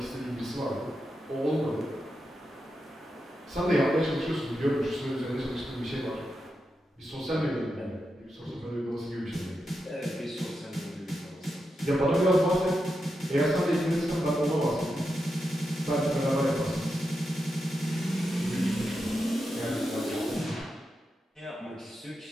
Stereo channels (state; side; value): normal; both; correlation 0.87